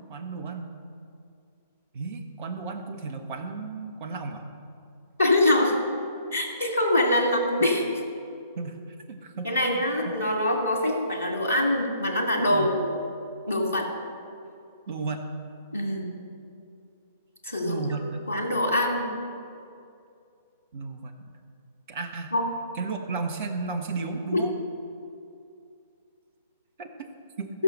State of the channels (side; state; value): both; inverted; correlation -0.63